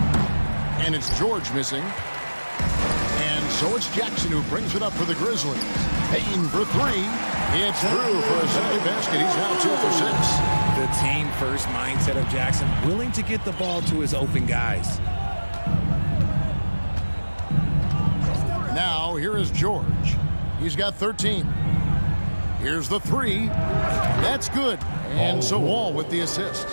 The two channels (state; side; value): inverted; both; correlation -1.00